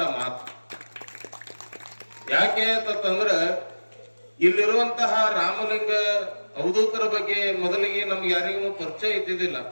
ಮಾತು. ಯಾಕೆ ಅಂತಂದ್ರ ಇಲ್ಲಿರುವಂತಹ ರಾಮಲಿಂಗ ಅವಧೂತರ ಬಗ್ಗೆ ಮೊದಲಿಗೆ ನಮ್ಗೆ ಯಾರಿಗೂ ಪರಿಚಯ ಇದ್ದಿದ್ದಿಲ್ಲ.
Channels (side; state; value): both; inverted; correlation -1.00